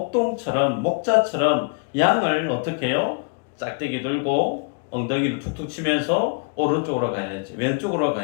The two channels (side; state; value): right; quieter; 35.0 dB